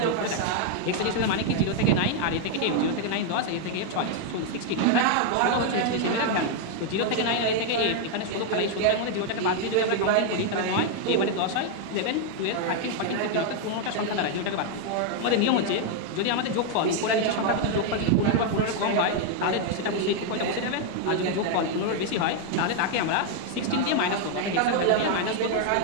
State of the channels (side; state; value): both; different; correlation 0.00